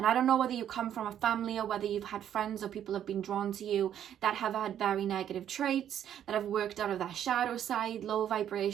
I don't know whether you come from a family or whether you've had friends or people have been drawn to you that have had very negative traits, that have worked out of that shadow side, low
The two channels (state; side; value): quieter; left; 10.1 dB